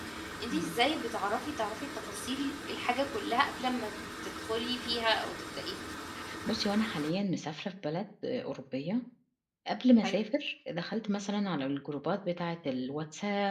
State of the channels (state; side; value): identical; both; correlation 1.00